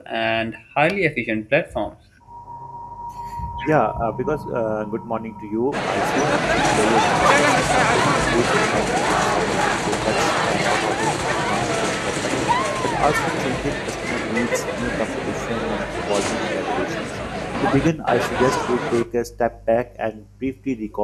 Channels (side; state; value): both; identical; correlation 1.00